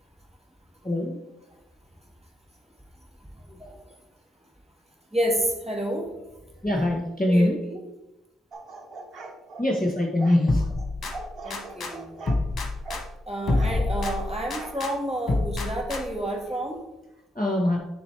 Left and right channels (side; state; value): both; normal; correlation 0.85